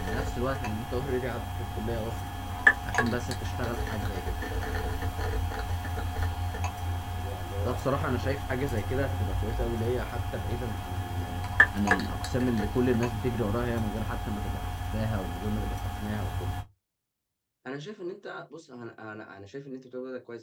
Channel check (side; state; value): both; identical; correlation 1.00